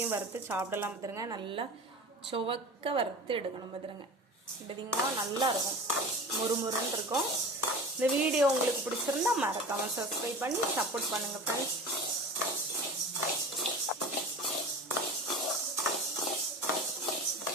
வறுத்து சாப்பிடலாம் பார்த்துருங்க. நல்லா சுவக்க வறுத்து எடுக்கணும் பார்த்துருங்க. பார்த்தீங்கன்னா நல்லா இருக்கும், முறுமுறுன்னு இருக்கும். இந்த வீடியோ உங்களுக்கு பிடிச்சிருந்தா மறக்காமல் சப்ஸ்கிரைப் பண்ணி சப்போர்ட் பண்ணுங்கள் ஃப்ரெண்ட்ஸ்.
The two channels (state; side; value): normal; both; correlation 0.35